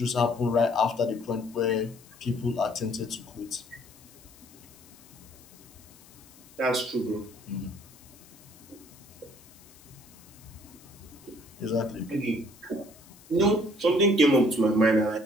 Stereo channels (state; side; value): noise; left; hiss, 23 dB below the sound